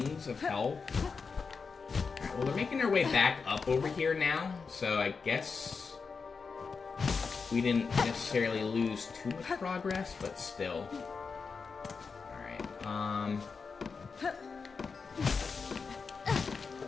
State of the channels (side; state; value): right; quieter; 5.1 dB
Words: of health. Alright, well, they're making their way back up over here now. So I guess... we didn't necessarily lose too much progress, but still. Alright,